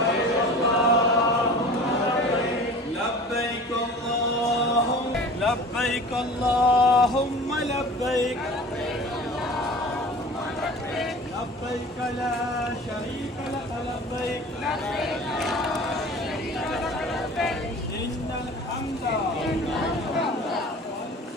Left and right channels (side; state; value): both; normal; correlation 0.40